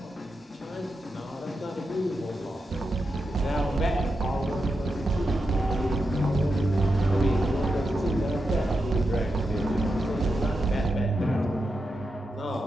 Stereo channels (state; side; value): normal; both; correlation 0.87